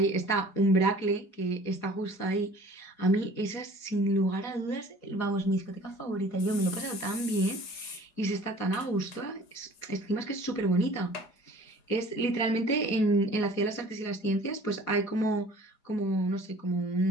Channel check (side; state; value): right; late; 4.8 ms